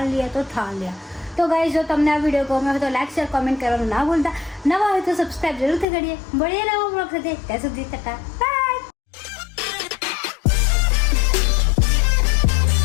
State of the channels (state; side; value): drops out; right; at 5.9 s